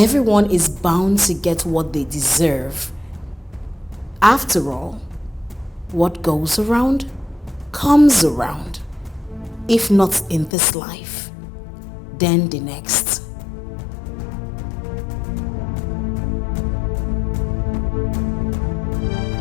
is bound to get what they deserve. After all, what goes around comes around. If not in this life, then the next.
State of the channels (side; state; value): right; drops out; at 10.5 s